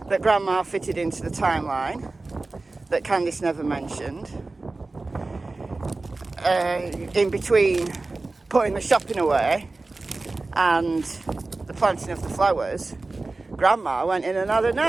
that Grandma fitted into the timeline that Candice never mentioned. In between putting the shopping away and the planting of the flowers, Grandma went in and had a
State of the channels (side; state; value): left; quieter; 3.4 dB